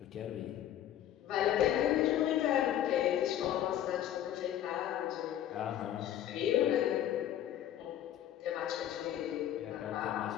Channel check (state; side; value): quieter; right; 11.4 dB